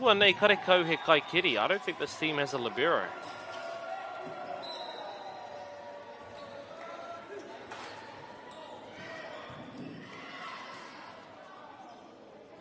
nei karekau he kai kiri. I don't think this team has a libero.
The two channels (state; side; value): identical; both; correlation 1.00